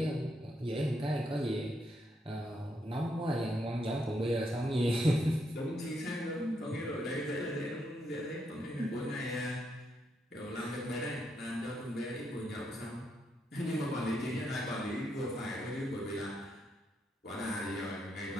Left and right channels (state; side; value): normal; both; correlation 0.79